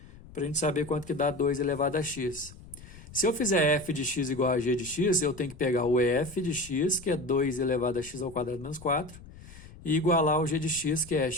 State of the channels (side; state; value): left; noise; rumble, 18 dB below the sound